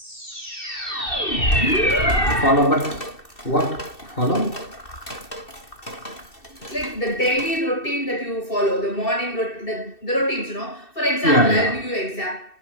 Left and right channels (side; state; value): right; late; 2.7 ms